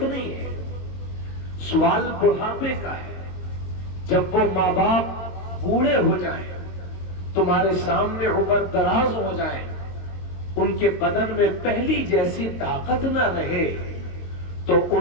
نہیں ہے۔ سوال بڑھاپے کا ہے، جب وہ ماں باپ بوڑھے ہو جائیں، تمہارے سامنے عمر دراز ہو جائیں، ان کے بدن میں پہلی جیسی طاقت نہ رہے، تو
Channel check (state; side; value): late; right; 22 ms